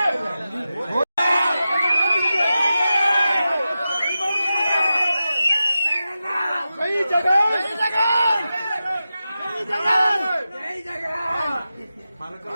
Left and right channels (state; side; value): inverted; both; correlation -0.92